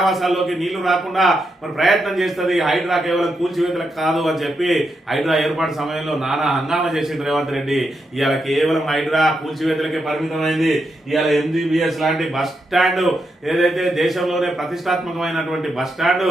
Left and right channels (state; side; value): normal; both; correlation 0.83